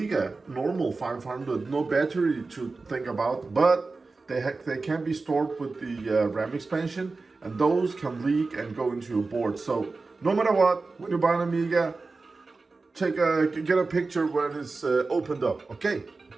normal 500, no battery to think about, but they can be stored with the RAM expansion, and those can leak and go into your board. So no matter what, when you buy an Amiga, get a picture when it's opened up, okay?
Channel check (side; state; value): left; quieter; 3.8 dB